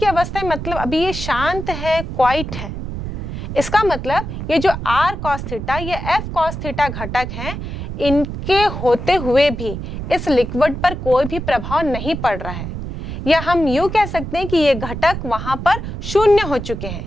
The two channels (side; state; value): right; noise; rumble, 7 dB below the sound